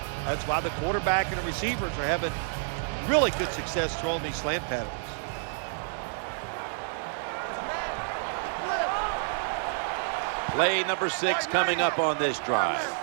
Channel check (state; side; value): silent; left; digital silence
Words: That's why the quarterback and the receivers are having really good success throwing these slant patterns. Play number 6 coming up on this drive.